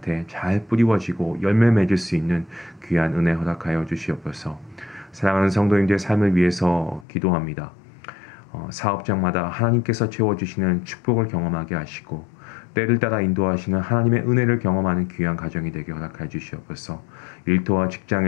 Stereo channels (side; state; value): right; drops out; at 7.1 s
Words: 잘 뿌리워지고 열매 맺을 수 있는 귀한 은혜 허락하여 주시옵소서. 사랑하는 성도님들의 삶을 위해서 기도합니다. 사업장마다 하나님께서 채워주시는 축복을 경험하게 하시고 때를 따라 인도하시는 하나님의 은혜를 경험하는 귀한 가정이 되게 허락해 주시옵소서. 일터와